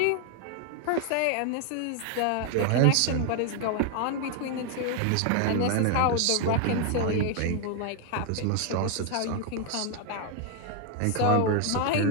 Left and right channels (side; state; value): both; different; correlation 0.00